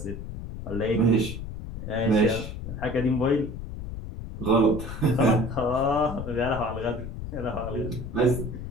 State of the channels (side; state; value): left; noise; rumble, 8 dB below the sound